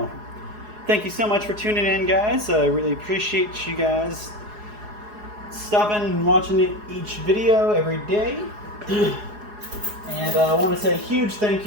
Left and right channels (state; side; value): late; left; 4.8 ms